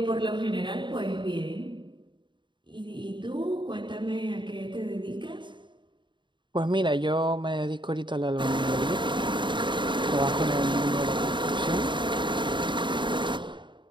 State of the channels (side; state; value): left; late; 0.23 ms